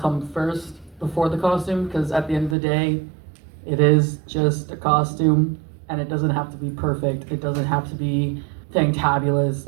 first before the costume, because at the end of the day, it is just a costume, and it doesn't have to be perfect. It doesn't have to be fantabulous.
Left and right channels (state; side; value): drops out; left; at 2.6 s